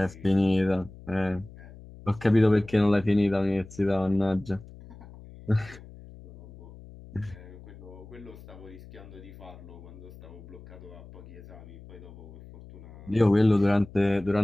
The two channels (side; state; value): left; noise; hum, 18 dB below the sound